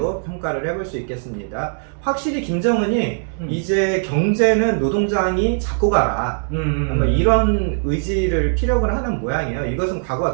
평가를 해볼 수 있겠습니다. 확실히 김정은이 이제 경제는 노동장이 잡고 가라 아마 이런 의지를 피력을 하는 모양이에요. 이것은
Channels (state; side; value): silent; left; 66 dB below the other